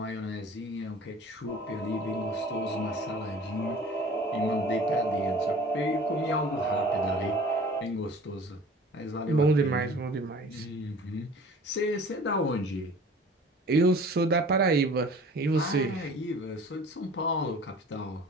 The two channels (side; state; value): both; normal; correlation 0.45